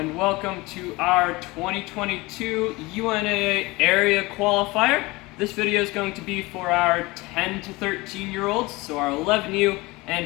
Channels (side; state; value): right; quieter; 22.4 dB